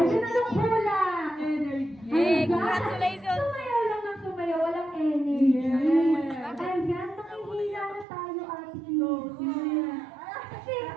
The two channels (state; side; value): drops out; left; at 8.1 s